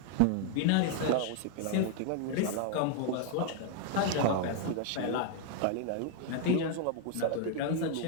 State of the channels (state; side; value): different; both; correlation 0.00